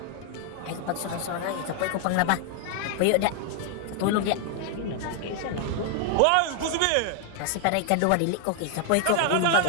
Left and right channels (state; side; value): different; both; correlation 0.00